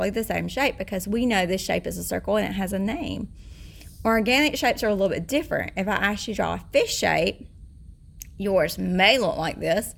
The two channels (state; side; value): identical; both; correlation 1.00